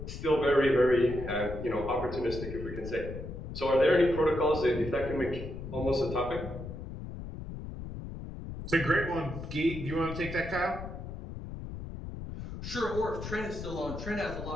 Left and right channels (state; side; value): noise; left; rumble, 9 dB below the sound